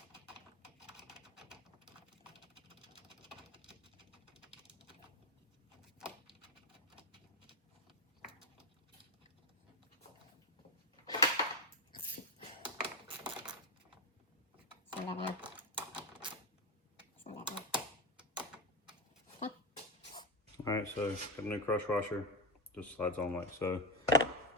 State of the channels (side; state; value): both; normal; correlation 0.13